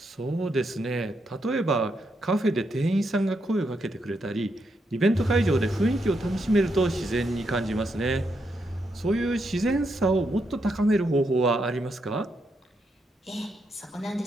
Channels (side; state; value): both; normal; correlation 0.81